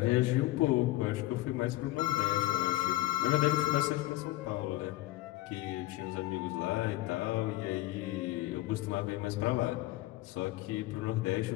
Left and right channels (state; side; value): quieter; right; 17.5 dB